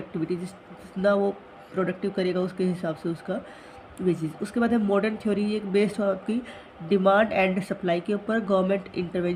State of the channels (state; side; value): identical; both; correlation 1.00